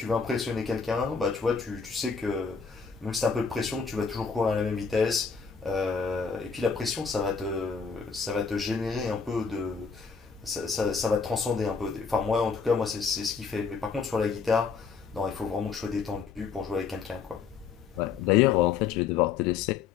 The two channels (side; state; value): right; quieter; 5.7 dB